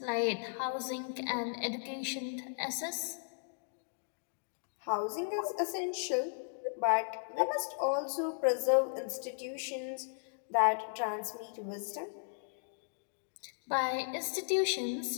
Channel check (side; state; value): right; silent; digital silence